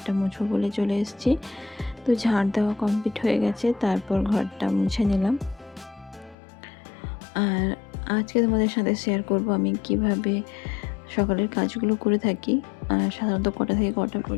মুছবো বলে চলে এসেছি। তো ঝাড় দেওয়া কমপ্লিট হয়ে গেছে, তারপর ঘরটা মুছে নিলাম। আর আজকে তোমাদের সাথে শেয়ার করব আমি কিভাবে সকালের কাজগুলো করে থাকি। আর সাধারণত কটা থেকে কটা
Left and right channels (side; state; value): right; drops out; at 6.4 s